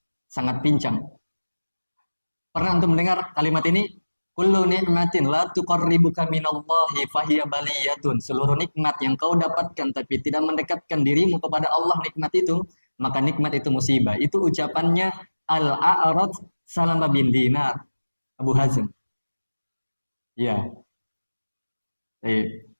Sangat pincang. Pernah untuk mendengar kalimat ini? Kullu ni'matin la tuqarribuka minallahi fahiya baliyatun. Seluruh nikmat yang kau dapatkan tapi tidak mendekatkan dirimu kepada Allah nikmat itu, maka nikmat itu musibah. Itu ucapannya Al-A'raj Salama bin Dinar, Abu Hazm. Ya.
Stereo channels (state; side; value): inverted; both; correlation -1.00